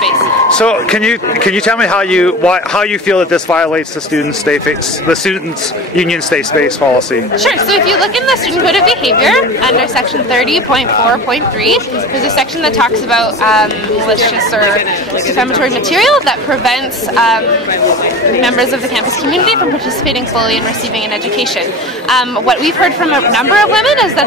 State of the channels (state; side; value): normal; both; correlation 0.33